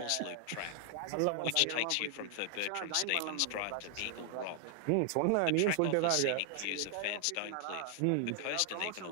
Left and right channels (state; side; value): different; both; correlation 0.00